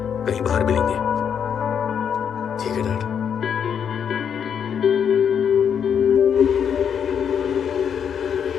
कहीं बाहर मिलेंगे। ठीक है डैड।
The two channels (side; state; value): right; quieter; 7.8 dB